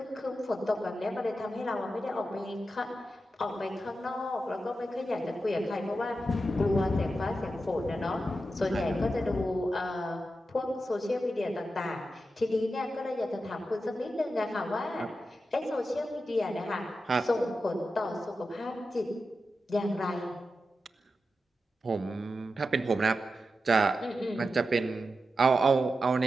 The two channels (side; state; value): both; normal; correlation 0.90